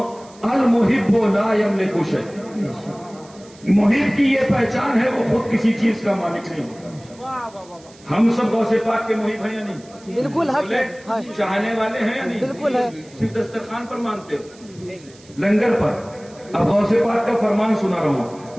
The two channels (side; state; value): right; noise; hiss, 25 dB below the sound